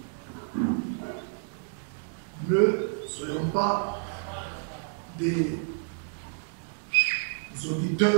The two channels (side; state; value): left; silent; digital silence